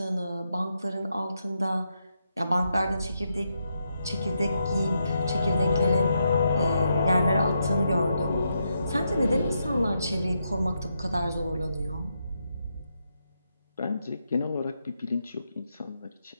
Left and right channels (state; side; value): inverted; both; correlation -0.81